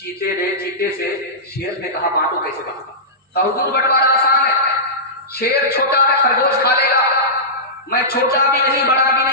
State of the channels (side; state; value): both; normal; correlation -0.17